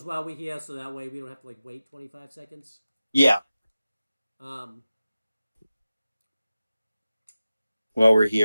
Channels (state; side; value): inverted; both; correlation -0.94